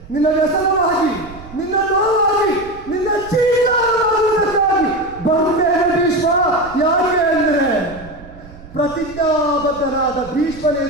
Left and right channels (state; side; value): noise; right; rumble, 18 dB below the sound